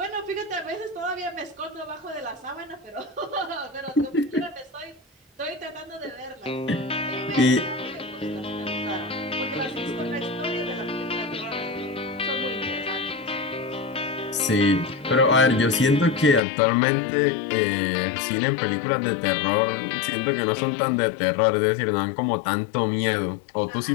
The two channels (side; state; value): right; drops out; at 16.4 s